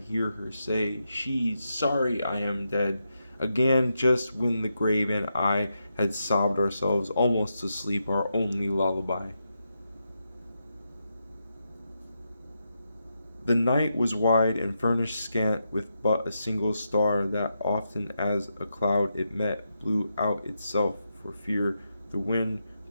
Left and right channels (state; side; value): inverted; both; correlation -0.85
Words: her say, she's sorry I am dead. Again, just when the grave and I had sobbed ourselves almost to sleep, our only lullaby. The night was wide and furnished scant with but a single star that often as a cloud it met blew out itself for fear. The wind